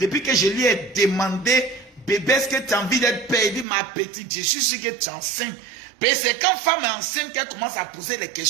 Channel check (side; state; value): left; drops out; at 3.7 s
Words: que je lui ai demandé, bébé, est-ce que tu as envie d'être père? Il dit, ma petite, je suis sûr que tu es enceinte. Mais c'est quand femme est enceinte qu'elle commence à poser les